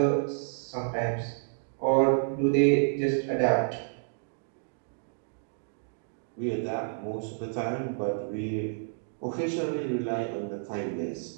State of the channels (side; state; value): left; silent; digital silence